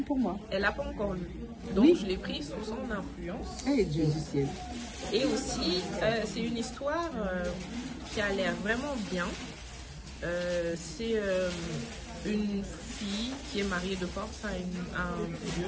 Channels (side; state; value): both; identical; correlation 1.00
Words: pour moi. Elle n'a pas encore lu. Donc, oui. Je l'ai pris sous son influence. Et Dieu du ciel. Et aussi, c'est une histoire qui a l'air vraiment bien. C'est une fille qui est mariée de force à une